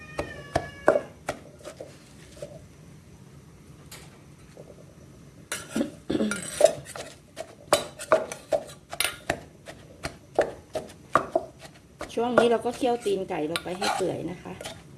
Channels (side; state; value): both; identical; correlation 1.00